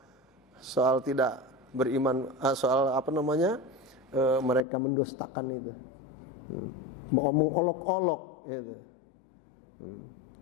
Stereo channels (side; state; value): right; drops out; at 4.7 s